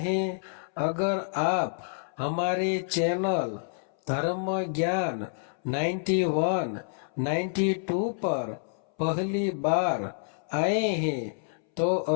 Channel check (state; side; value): silent; right; 59 dB below the other